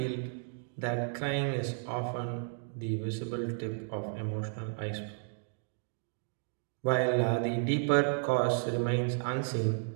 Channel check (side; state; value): left; silent; digital silence